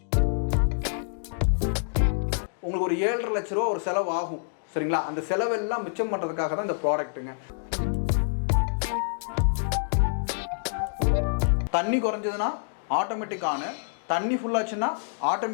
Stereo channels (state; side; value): silent; right; digital silence